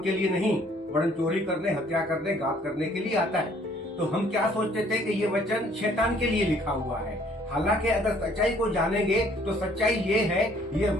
के लिए नहीं वरन चोरी करने, हत्या करने, घात करने के लिए आता है। तो हम क्या सोचते थे कि ये वचन शैतान के लिए लिखा हुआ है। हालांकि अगर सच्चाई को जानेंगे तो सच्चाई ये है, ये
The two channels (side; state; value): both; normal; correlation 0.60